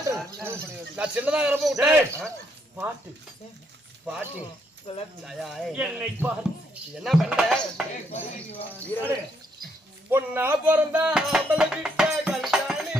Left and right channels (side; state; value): both; normal; correlation 0.73